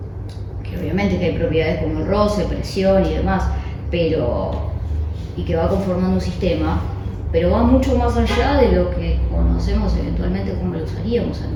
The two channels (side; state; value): both; identical; correlation 1.00